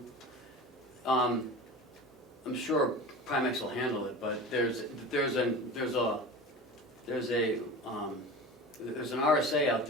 I'm sure Primex will handle it, but there's an RSA out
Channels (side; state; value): both; normal; correlation 0.33